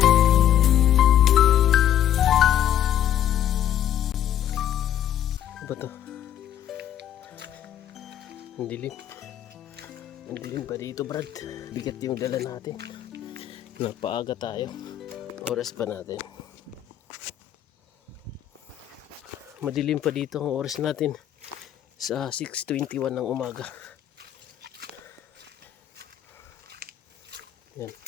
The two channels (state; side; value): quieter; right; 10.8 dB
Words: Ano ba to? Ang dilim. Ang dilim pa dito, brad. Bigat yung dala natin. Napaaga tayo. Oras pa natin. Madilim pa dito ang oras natin sa 6:21 ng umaga. Yan.